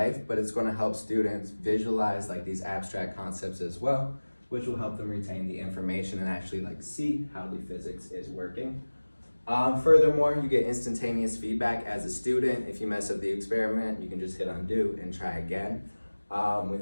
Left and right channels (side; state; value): both; inverted; correlation -1.00